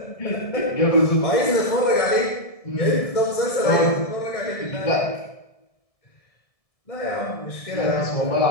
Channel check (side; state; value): right; late; 1.7 ms